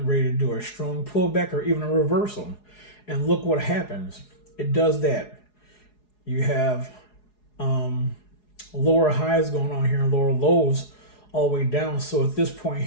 ready to do a strong pullback or even a reversal. And look what happens. It does that. You have lower highs going on here and lower lows all the way down. So at this point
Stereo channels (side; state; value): right; late; 4.8 ms